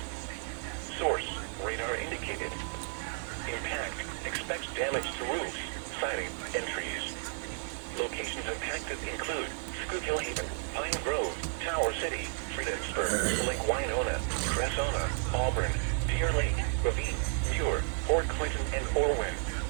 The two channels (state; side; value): quieter; left; 39.2 dB